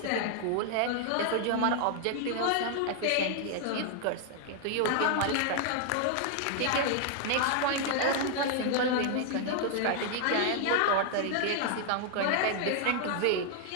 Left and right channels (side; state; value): both; different; correlation 0.00